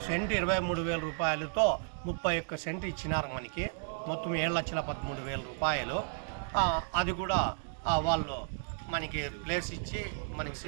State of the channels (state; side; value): silent; left; digital silence